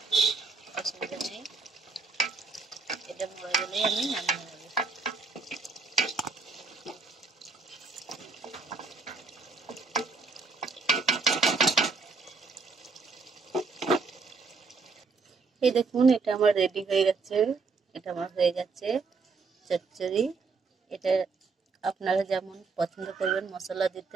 অসুবিধা নেই। এটা মরে গেলেই আমি নামিয়ে নেব। এই দেখুন, এটা আমার রেডি হয়ে গেছে। এটা আমার হয়ে গেছে চচ্চড়ি। এটা আপনারা যেমন পছন্দ করবেন মশলা দিতে,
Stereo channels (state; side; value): quieter; left; 4.3 dB